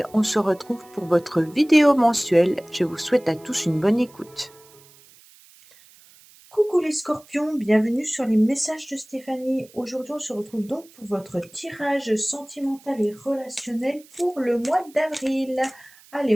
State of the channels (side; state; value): right; noise; hiss, 26 dB below the sound